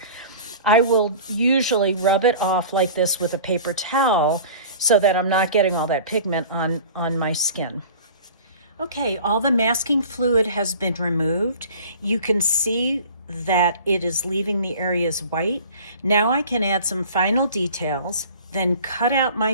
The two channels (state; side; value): inverted; both; correlation -0.42